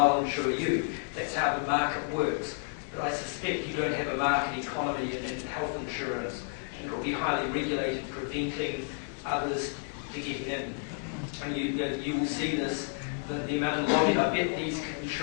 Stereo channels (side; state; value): right; silent; 57 dB below the other